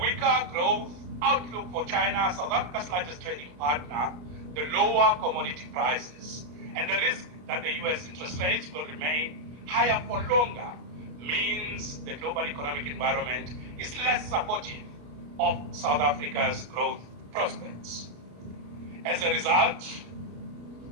growth outlook for China, South Africa's largest trading partner, the lower commodity prices, and the risk that the US interest rates will remain higher for longer means the global economic environment is less supportive of South Africa's growth prospects. As a result,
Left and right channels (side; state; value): left; late; 33 ms